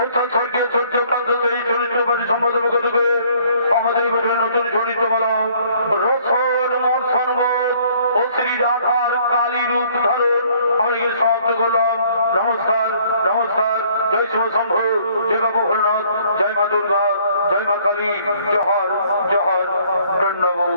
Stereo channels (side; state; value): both; inverted; correlation -0.60